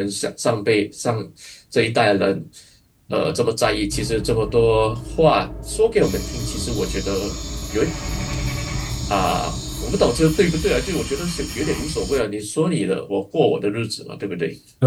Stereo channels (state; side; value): identical; both; correlation 1.00